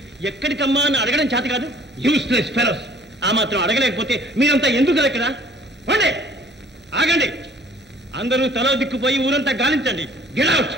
ఎక్కడికమ్మా అని అడగడం చేత కాదు. Useless fellows. ఆ మాత్రం అడగలేకపోతే మీరంతా ఎందుకు ఇక్కడ? ఆగండి. అందరూ తలో దిక్కుపోయి ఊరంతా గాలించండి. Get out.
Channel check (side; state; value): both; normal; correlation 0.55